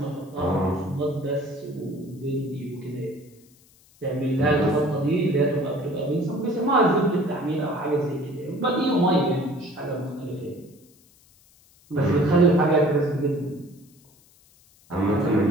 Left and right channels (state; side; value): noise; left; hiss, 29 dB below the sound